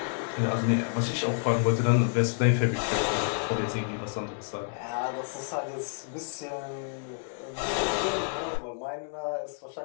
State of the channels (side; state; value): right; silent; digital silence